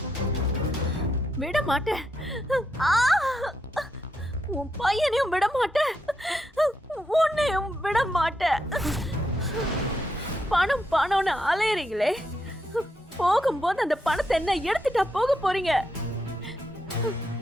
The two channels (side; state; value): both; normal; correlation 0.81